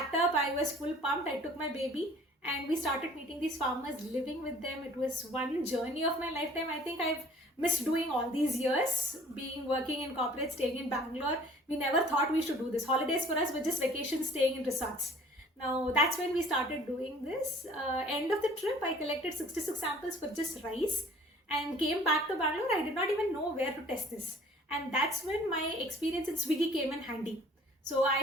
up, I was full pumped, I took my baby and we started meeting these farmers, living with them. It was one journey of my lifetime. I think I've missed doing all these years, working in corporate, staying in Bangalore. We never thought we should do this. Holidays for us were just vacations, staying in resorts. Now that's when we started doing this. End of the trip, I collected 66 samples for just rice. and came back to Bangalore. I did not even know where to test this. And that's when my experience in Swiggy came in handy. So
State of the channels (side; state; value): both; normal; correlation 0.52